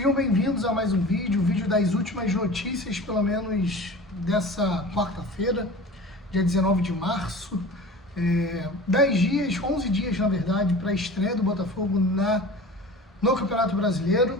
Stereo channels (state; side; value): normal; both; correlation 0.38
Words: bem-vindos a mais um vídeo das últimas notícias, pelo menos dessa quarta-feira, dia 19 de março. 10 dias, 11 dias na verdade, para a estreia do Botafogo no Campeonato Brasileiro.